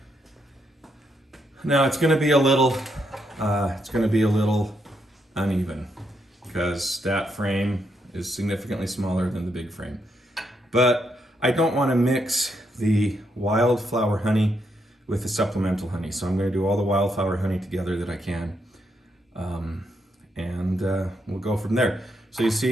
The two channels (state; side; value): normal; both; correlation 0.78